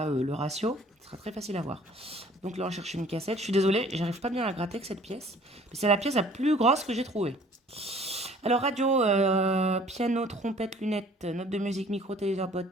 le ratio. Ce sera très facile à voir. Donc là, on cherche une cassette. Je suis désolée, j'arrive pas bien à gratter avec cette pièce. Mais c'est la pièce la plus grosse que j'ai trouvée. Alors, radio, piano, trompette, lunettes, notes de musique, micro, téléviseur,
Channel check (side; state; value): both; normal; correlation 0.53